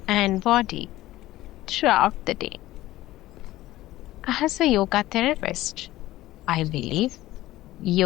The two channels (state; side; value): quieter; right; 16.1 dB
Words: and body throughout the day. As a yoga therapist, I believe